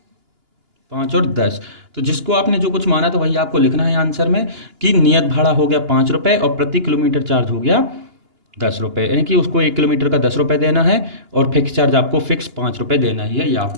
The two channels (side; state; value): left; late; 2.9 ms